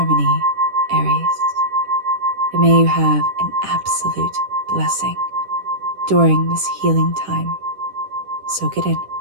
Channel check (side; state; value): left; late; 10 ms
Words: Aries. And may you have an absolute blessing during this healing time. Soak it in.